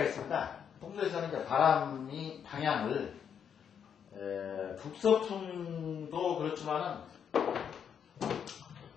있습니다. 풍수에서는 이제 바람이 방향을 북서풍도 그렇지만은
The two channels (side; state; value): right; quieter; 7.9 dB